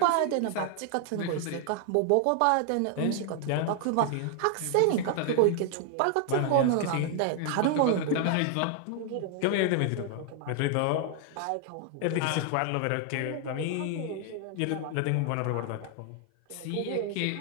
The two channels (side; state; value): both; different; correlation 0.00